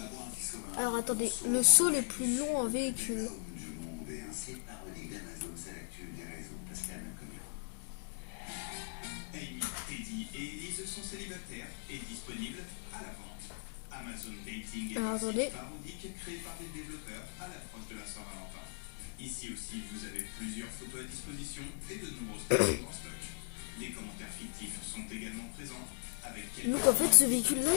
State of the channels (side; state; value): right; silent; digital silence